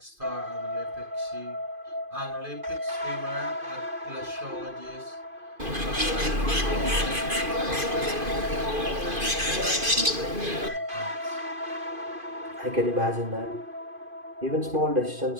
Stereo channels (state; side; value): late; left; 2.5 ms